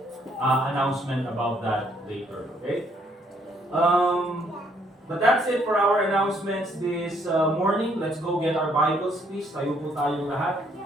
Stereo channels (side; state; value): both; normal; correlation 0.67